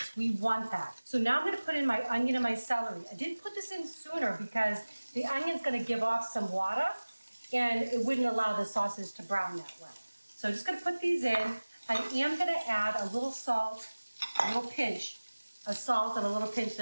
We want that. So now I'm gonna put in my onion and my celery. I didn't put this in sooner because the onion's gonna give off some water, and it wouldn't allow the sauces to brown that well. So I'm just gonna put these in. I am gonna add a little salt, a little pinch of salt and a little pinch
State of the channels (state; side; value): inverted; both; correlation -1.00